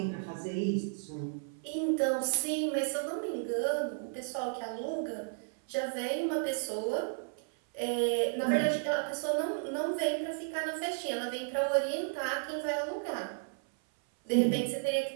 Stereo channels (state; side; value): silent; left; 56 dB below the other